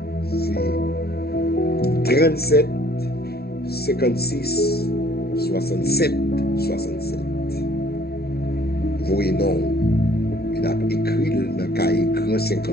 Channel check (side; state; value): right; late; 0.46 ms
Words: c'est 37 56 67 67. Voyez non, Il a écrit dans le cahier Grand